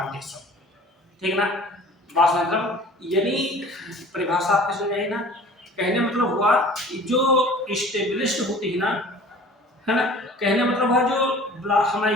ठीक ना, बात मतलब यानी परिभाषा आपके समझ आई ना, कहने मतलब हुआ जो स्टेबलिश्ड होती है ना, है ना, कहने मतलब हुआ जो हम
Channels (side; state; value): both; normal; correlation 0.46